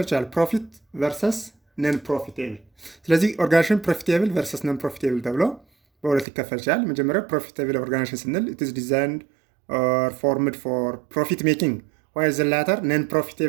ይችላል፣ ፕሮፊት ቨርሰስ ነን ፕሮፊቴብል። ስለዚህ ኦርጋናይዜሽን ፕሮፊቴብል ቨርሰስ ነን ፕሮፊቴብል ተብሎ በሁለት ይከፈል ይችላል። መጀመሪያው ፕሮፊቴብል ኦርጋናይዜሽን ስንል it is designed or formed for profit making, while the latter non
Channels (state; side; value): drops out; left; at 6.2 s